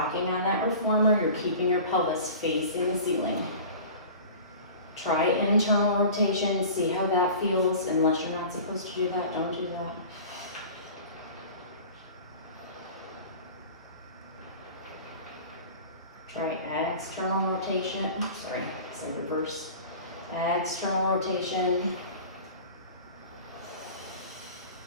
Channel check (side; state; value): both; inverted; correlation -0.39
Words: on that reformer, you're keeping your pelvis facing the ceiling. Try internal rotation, see how that feels. Unless you're not supposed to do that, don't do that. Try external rotation, sorry, so reverse. External rotation.